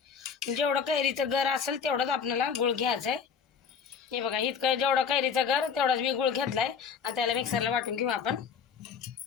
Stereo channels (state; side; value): quieter; right; 6.6 dB